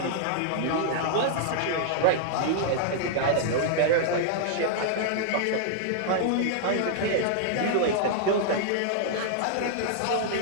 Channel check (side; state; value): both; different; correlation -0.01